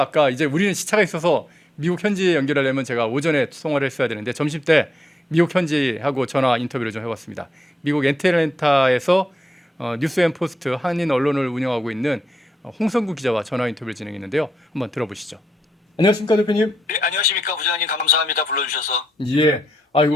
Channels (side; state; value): both; normal; correlation 0.83